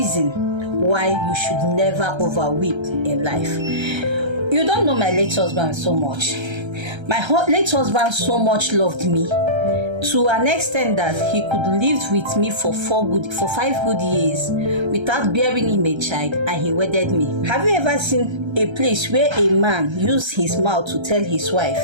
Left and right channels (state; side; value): late; left; 1.3 ms